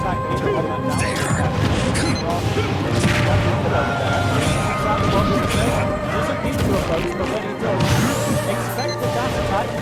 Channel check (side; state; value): both; identical; correlation 1.00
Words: Doesn't need to approach, but when he does, expect the dash attack